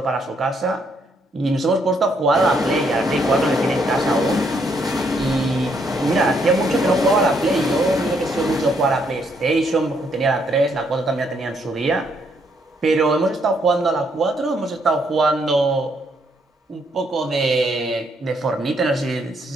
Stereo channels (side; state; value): both; normal; correlation 0.72